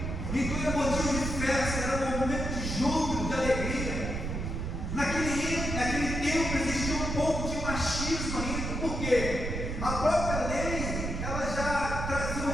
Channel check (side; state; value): right; noise; rumble, 3 dB below the sound